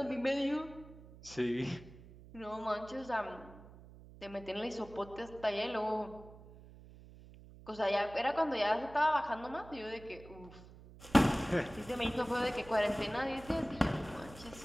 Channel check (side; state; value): right; noise; hum, 19 dB below the sound